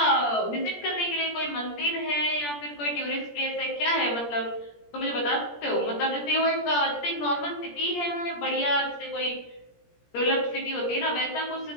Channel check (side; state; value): right; late; 17 ms